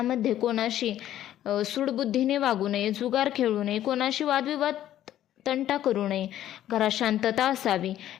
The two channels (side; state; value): right; quieter; 12.2 dB